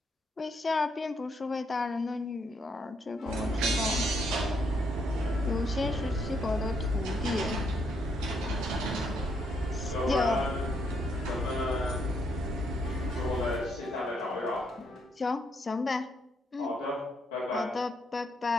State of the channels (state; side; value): normal; both; correlation 0.74